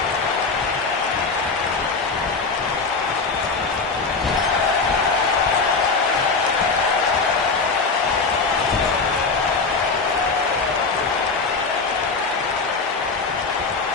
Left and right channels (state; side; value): quieter; right; 4.3 dB